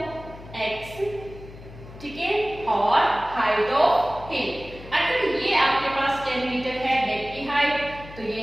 x, ठीक है, और हाइट ऑफ हिल। अगर ये आपके पास 10 मीटर है डेक की हाइट, तो ये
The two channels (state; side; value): noise; left; hum, 17 dB below the sound